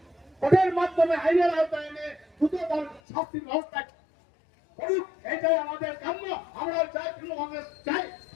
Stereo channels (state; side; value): drops out; right; at 3.0 s